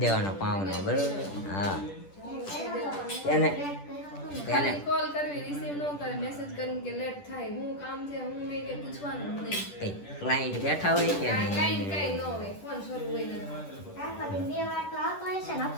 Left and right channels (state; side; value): late; right; 10 ms